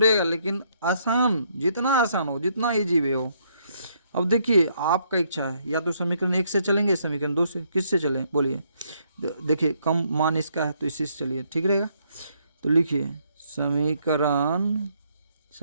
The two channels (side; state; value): both; inverted; correlation -0.71